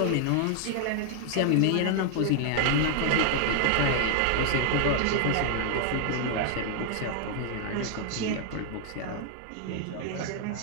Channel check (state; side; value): different; both; correlation 0.00